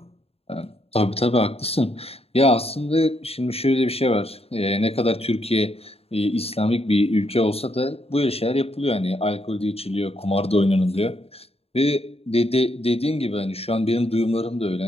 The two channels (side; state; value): right; late; 0.29 ms